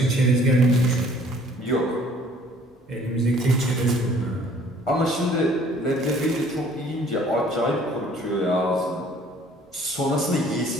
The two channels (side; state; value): both; normal; correlation 0.56